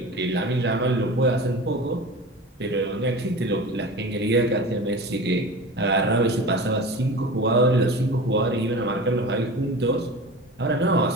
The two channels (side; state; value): both; normal; correlation 0.33